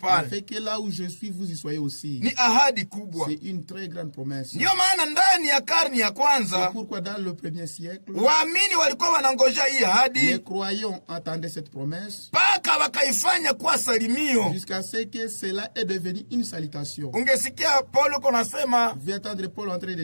Afin que là où je suis vous y soyez aussi. Ni ahadi kubwa. C'est une très grande promesse. Ndio maana ndani ya karne ya kwanza, c'est pourquoi dans le premier siècle, waamini walikuwa wanangojea hii ahadi, les croyants attendaient cette promesse, paka wakaifanya kuwa salimio, jusqu'à ce que cela est devenu une salutation. Ungesikia Paulo konasema, vous entendre Paul en train de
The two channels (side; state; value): both; inverted; correlation -1.00